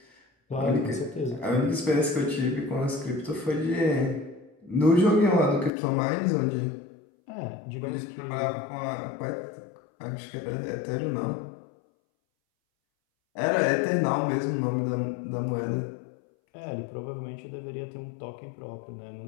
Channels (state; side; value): drops out; right; at 5.7 s